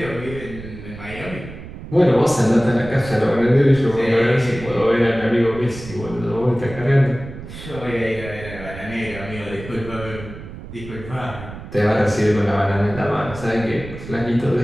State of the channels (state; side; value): noise; right; rumble, 13 dB below the sound